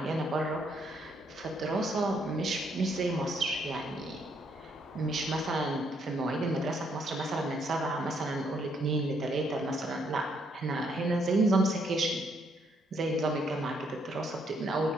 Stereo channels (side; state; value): both; normal; correlation 0.72